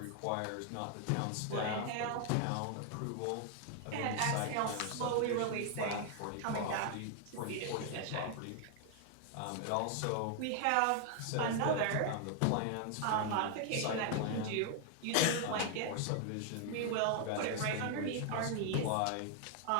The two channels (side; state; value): both; different; correlation 0.00